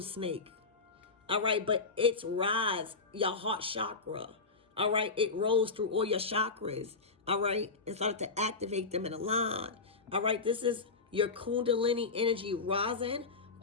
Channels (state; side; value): quieter; right; 4.2 dB